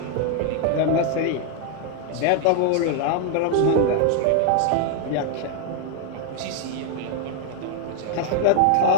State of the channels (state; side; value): different; both; correlation 0.00